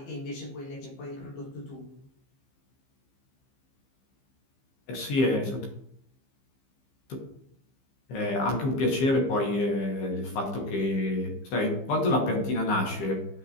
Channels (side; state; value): right; late; 15 ms